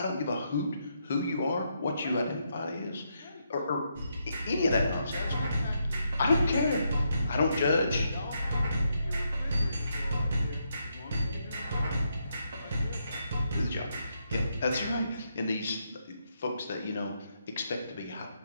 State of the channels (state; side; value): inverted; both; correlation -0.79